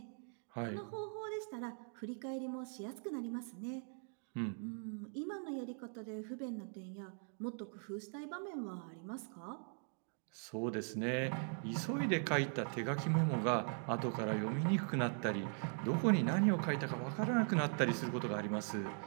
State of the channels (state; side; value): silent; left; 51 dB below the other